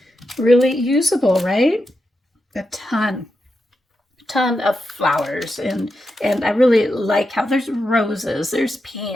really usable, right? A ton of flowers, and I really like how there's roses, there's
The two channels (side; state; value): both; normal; correlation 0.87